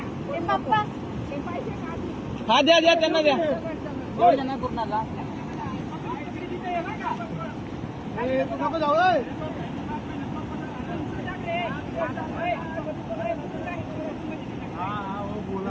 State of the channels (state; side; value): identical; both; correlation 1.00